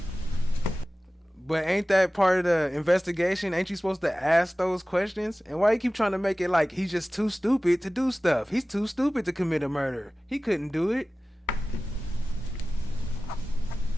But ain't that part of the investigation? Ain't you supposed to ask those questions? And why you keep trying to make it like he's just too stupid to do stuff? He's too stupid to commit a murder. He couldn't do it.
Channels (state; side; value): normal; both; correlation 0.97